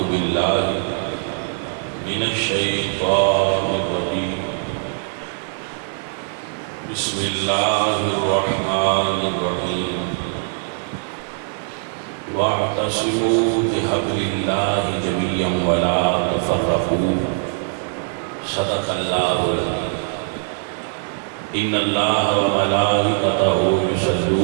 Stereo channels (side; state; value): left; silent; 65 dB below the other